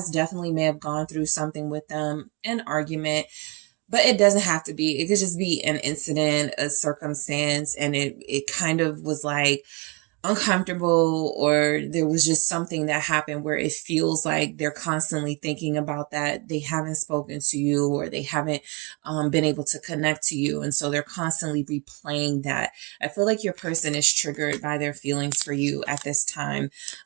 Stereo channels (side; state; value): left; quieter; 29.3 dB